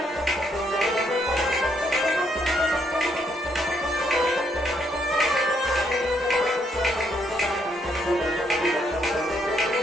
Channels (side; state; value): both; normal; correlation 0.73